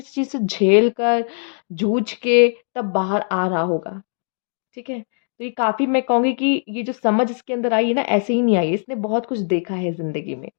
चीज़ से झेल कर, जूझ के तब बाहर आ रहा होगा, ठीक है। तो ये काफ़ी, मैं कहूँगी कि ये जो समझ इसके अंदर आई है ना, ऐसे ही नहीं आई है, इसने बहुत कुछ देखा है ज़िंदगी में,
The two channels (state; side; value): silent; right; 65 dB below the other